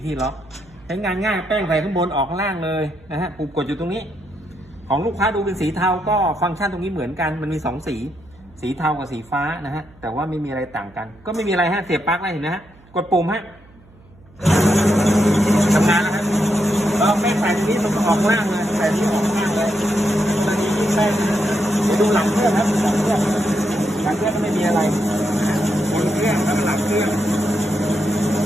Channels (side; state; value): right; noise; hum, 27 dB below the sound